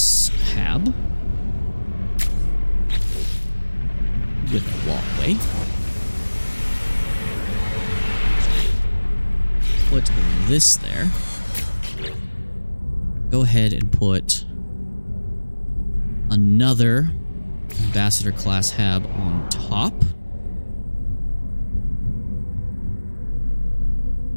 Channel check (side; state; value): both; inverted; correlation -1.00